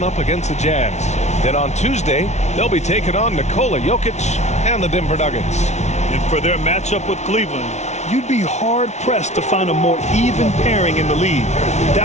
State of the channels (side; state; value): right; late; 0.32 ms